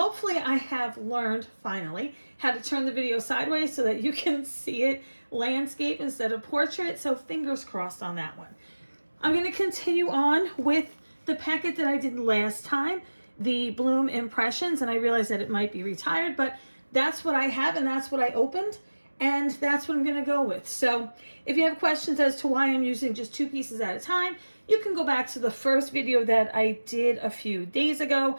I have learned finally how to turn the video sideways so that you can see it landscape instead of portrait. So fingers crossed on that one. I'm going to continue on with the packet that I did last time, the Bloom Impressions, and I realized that it might be retired, but that's what I have and that's what I opened. And that's what I'm going to go with. So if you have questions as to why I'm using just 2 pieces at a time, you can go back to the first video that I did a few days ago,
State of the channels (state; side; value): inverted; both; correlation -1.00